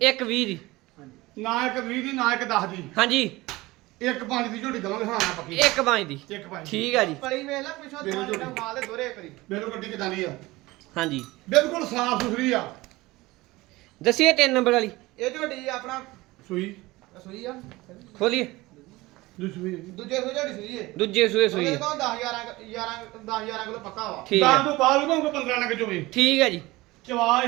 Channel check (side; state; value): left; quieter; 20.2 dB